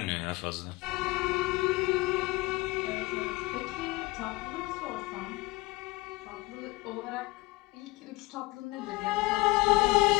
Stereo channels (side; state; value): right; quieter; 21.7 dB